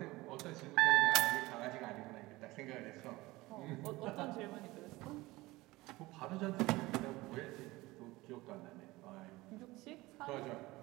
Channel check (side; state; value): left; quieter; 20.1 dB